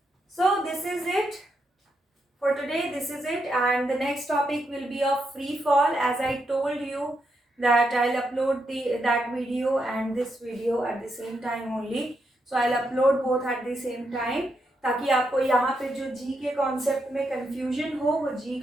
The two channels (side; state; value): both; normal; correlation 0.82